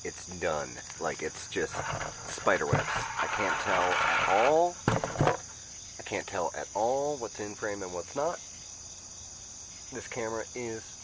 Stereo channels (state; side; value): identical; both; correlation 1.00